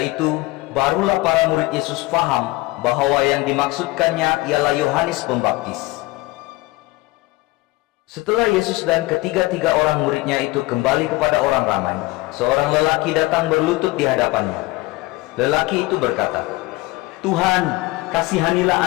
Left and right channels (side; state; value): right; quieter; 20.5 dB